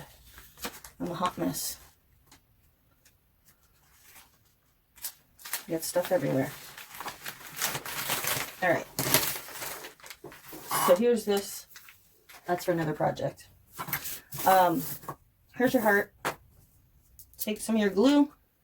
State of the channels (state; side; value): identical; both; correlation 1.00